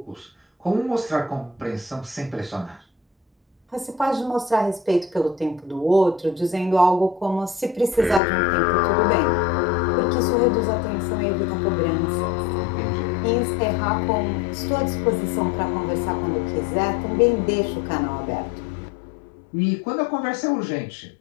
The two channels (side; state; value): right; drops out; at 8.2 s